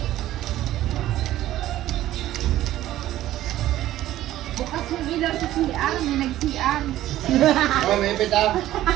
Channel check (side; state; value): left; quieter; 14.1 dB